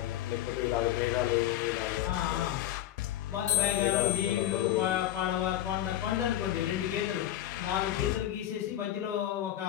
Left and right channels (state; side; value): quieter; right; 12.5 dB